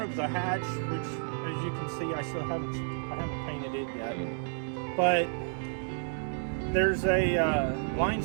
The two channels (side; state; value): left; silent; digital silence